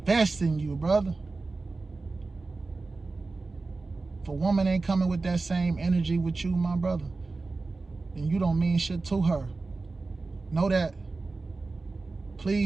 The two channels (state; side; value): quieter; left; 3.7 dB